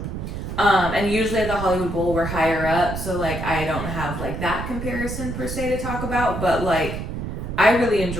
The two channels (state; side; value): noise; right; rumble, 5 dB below the sound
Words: And usually at the Hollywood Bowl we're higher up, so like I don't have like that comparison per se to talk about, but like I really